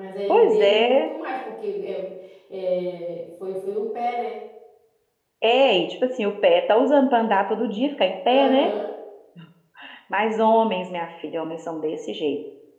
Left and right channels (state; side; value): identical; both; correlation 1.00